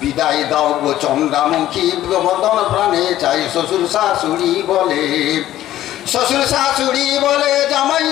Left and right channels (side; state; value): right; quieter; 13.4 dB